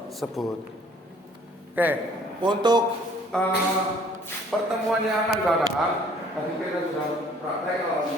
Oke, untuk pertemuan yang akan datang, tadi kita sudah praktek,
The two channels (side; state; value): both; normal; correlation 0.57